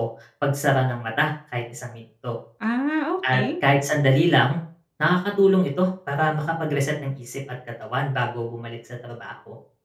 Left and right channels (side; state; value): both; identical; correlation 1.00